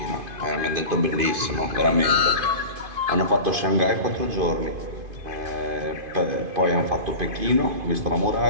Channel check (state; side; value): late; left; 2.5 ms